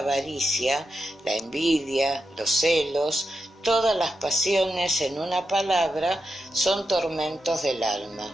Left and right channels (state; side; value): normal; both; correlation 0.87